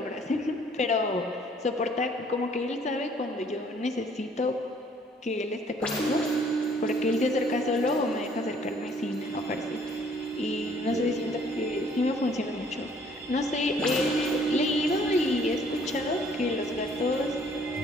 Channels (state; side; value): normal; both; correlation 0.60